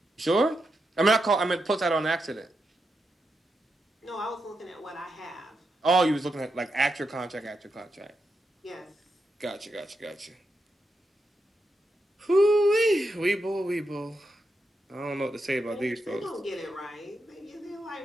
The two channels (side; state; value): both; normal; correlation 0.85